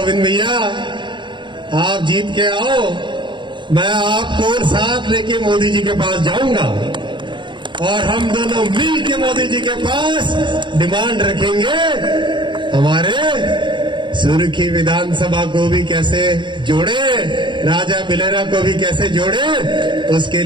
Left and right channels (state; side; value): late; left; 0.23 ms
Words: भैया आप जीत के आओ, मैं आपको साथ लेके मोदी जी के पास जाऊंगा और हम दोनों मिल के मोदी जी के पास डिमांड रखेंगे हमारे सुर्खी विधानसभा को भी कैसे जोड़े, राजा बिलेरा को भी कैसे जोड़े, उसके